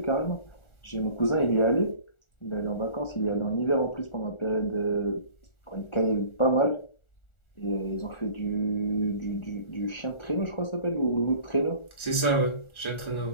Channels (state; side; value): late; right; 1.3 ms